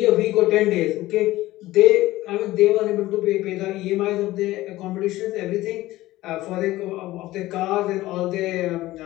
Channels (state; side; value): quieter; right; 16.9 dB